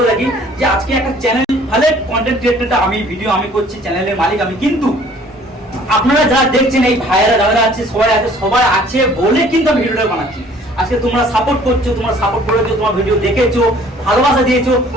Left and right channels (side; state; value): both; normal; correlation 0.55